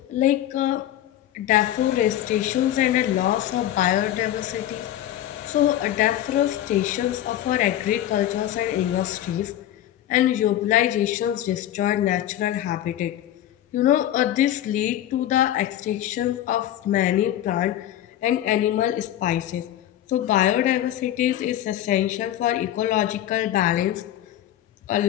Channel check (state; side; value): quieter; right; 12.4 dB